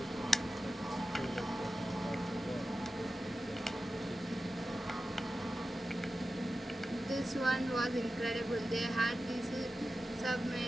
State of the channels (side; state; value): both; normal; correlation 0.93